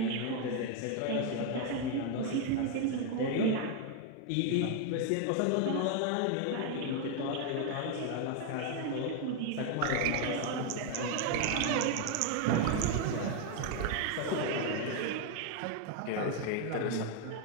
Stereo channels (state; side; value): different; both; correlation 0.01